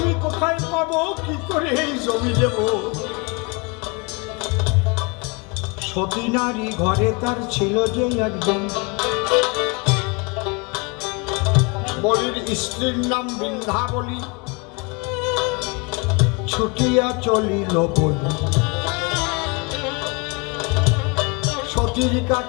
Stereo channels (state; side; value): quieter; right; 29.7 dB